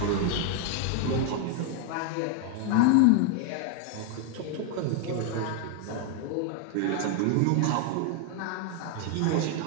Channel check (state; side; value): different; both; correlation 0.01